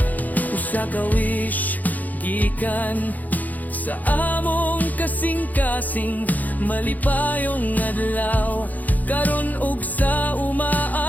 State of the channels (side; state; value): right; late; 0.081 ms